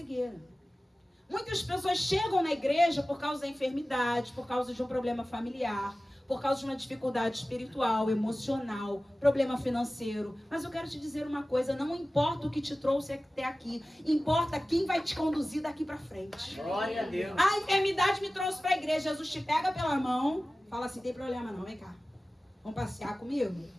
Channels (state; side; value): normal; both; correlation 0.96